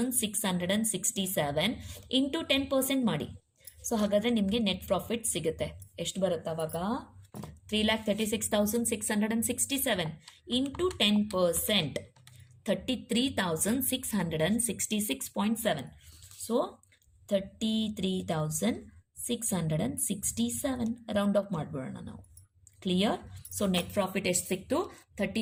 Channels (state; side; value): identical; both; correlation 1.00